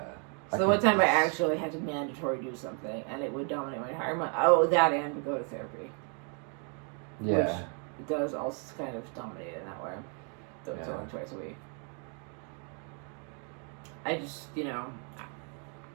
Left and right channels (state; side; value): quieter; left; 39.9 dB